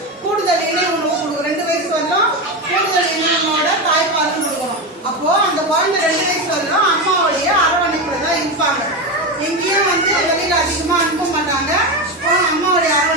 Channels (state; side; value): normal; both; correlation 0.16